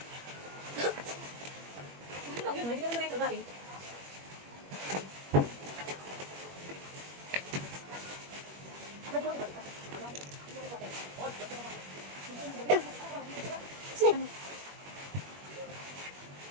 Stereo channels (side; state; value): left; late; 21 ms